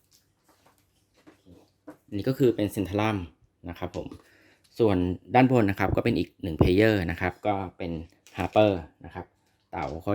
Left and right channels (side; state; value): both; identical; correlation 1.00